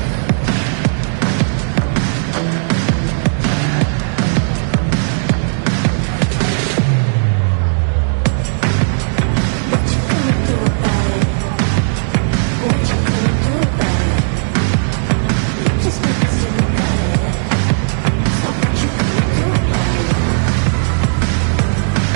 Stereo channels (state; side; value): silent; left; digital silence